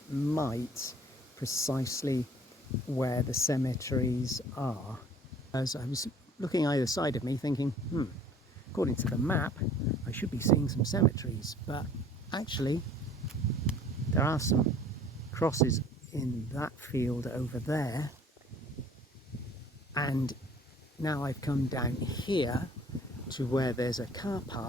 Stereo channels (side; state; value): both; normal; correlation 0.52